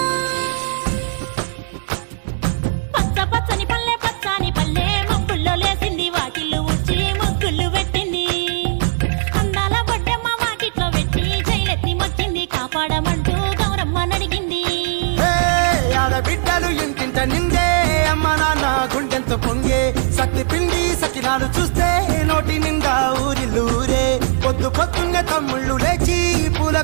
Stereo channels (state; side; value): silent; left; digital silence